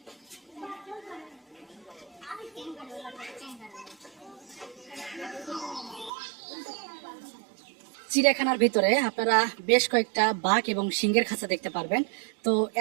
চিড়িয়াখানার ভিতরে আপনারা বেশ কয়েকটা বাঘ এবং সিংহের খাঁচা দেখতে পারবেন। তো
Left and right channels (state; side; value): drops out; left; at 6.1 s